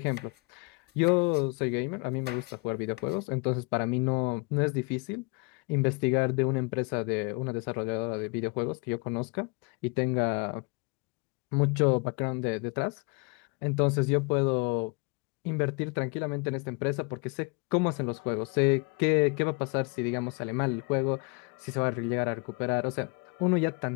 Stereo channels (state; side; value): quieter; right; 30.4 dB